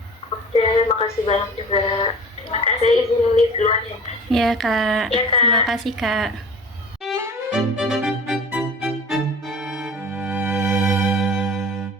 Oke, makasih banyak juga. Terima kasih. Saya izin live duluan ya. Ya Kak, Ya, Kak. terima kasih Kak.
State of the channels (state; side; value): normal; both; correlation 0.41